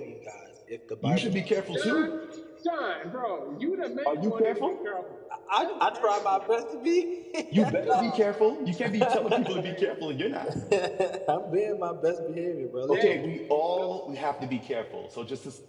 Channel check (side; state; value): both; identical; correlation 1.00